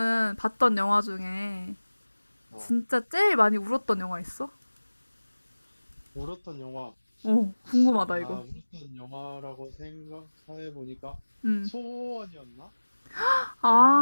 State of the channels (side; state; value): both; inverted; correlation -1.00